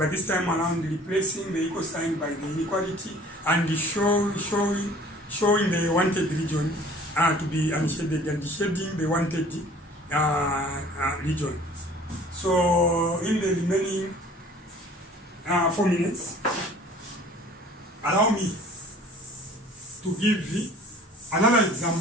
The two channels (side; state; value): both; normal; correlation 0.50